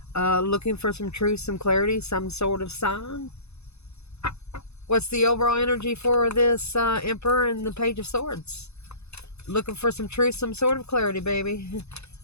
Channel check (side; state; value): right; late; 0.80 ms